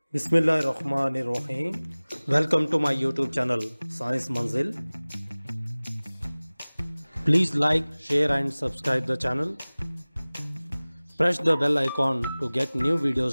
Bismillahirrahmanirrahim. Welcome to my YouTube channel Science Manzil. Please like, share and subscribe the channel. Press the bell icon to get new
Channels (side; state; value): both; inverted; correlation -0.99